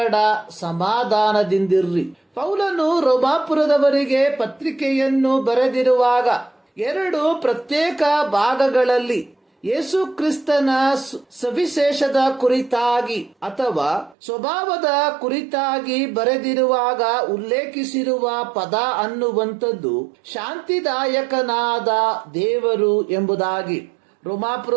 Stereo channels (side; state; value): left; drops out; at 14.2 s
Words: ಸಮಾಧಾನದಿಂದಿರ್ರಿ. ಪೌಲನು ರೋಮಾಪುರದವರಿಗೆ ಪತ್ರಿಕೆಯನ್ನು ಬರೆದಿರುವಾಗ 2 ಪ್ರತ್ಯೇಕ ಭಾಗಗಳಲ್ಲಿ ಯೇಸು ಕ್ರಿಸ್ತನ ಸವಿಶೇಷದ ಕುರಿತಾಗಿ ಅಥವಾ ಸ್ವಭಾವದ ಕುರಿತಾಗಿ ಬರೆದಿರುವಾಗ ಉಲ್ಲೇಖಿಸಿರುವ ಪದ ಅನ್ನುವಂಥದ್ದು ಶಾಂತಿದಾಯಕನಾದ ದೇವರು ಎಂಬುದಾಗಿ.